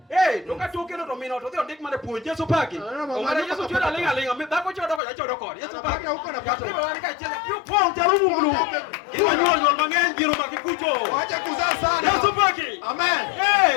Donga tokeno to mino to dhio ndik mane puonj Yeso paki. Ongara Yeso chura lenga. Dhako chodo ko jachodo kod. Yeso paki. Huko na pato. Ibo wani ka chela. Yo pon jarumu mulu. Iwa nyuol mang'eny jiro makikucho. Wacha kuzaa sana. Yeso paki.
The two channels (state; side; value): drops out; right; at 5.0 s